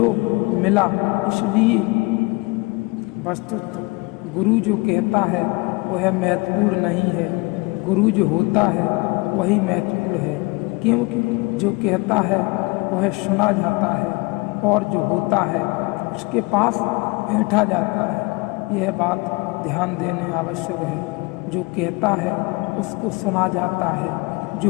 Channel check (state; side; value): quieter; right; 26.3 dB